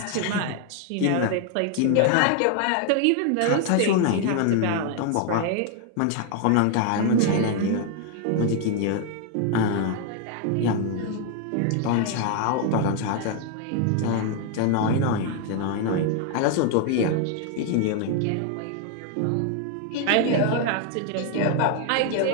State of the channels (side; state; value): both; different; correlation 0.00